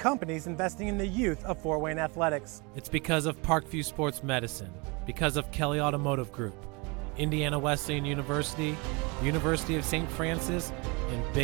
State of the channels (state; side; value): quieter; left; 28.8 dB